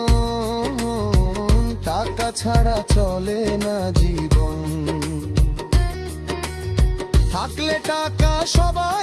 টাকা ছাড়া চলে না জীবন। থাকলে টাকা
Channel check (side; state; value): both; identical; correlation 1.00